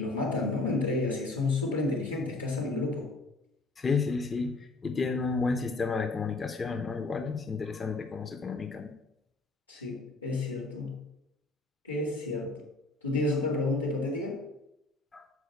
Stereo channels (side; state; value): right; quieter; 3.2 dB